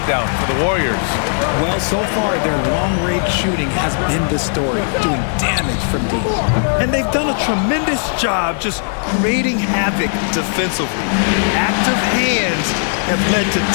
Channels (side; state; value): right; silent; 62 dB below the other